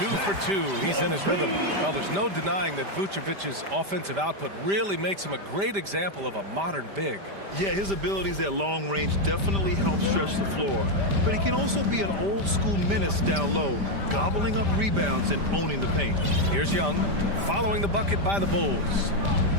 for 2. He's in his rhythm. Well, there's no denying that Vucevic's offensive output really makes him a great example of a modern big. Yeah, his abilities at long range definitely help stretch the floor. But he can also be an old-school menace down low, gobbling up rebounds and owning the paint. Here's Young, following the bucket by the Bulls.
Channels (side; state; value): left; late; 5.0 ms